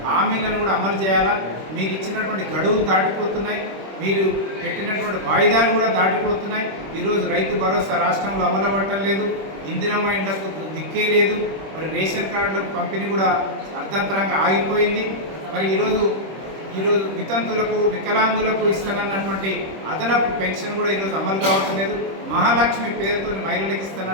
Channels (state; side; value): late; left; 26 ms